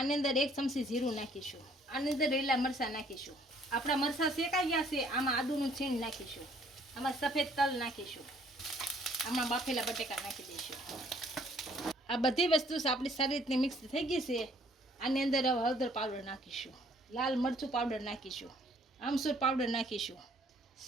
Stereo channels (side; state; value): both; normal; correlation 0.61